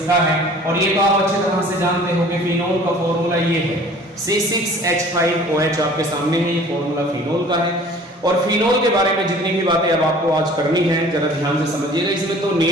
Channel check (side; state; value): both; normal; correlation 0.48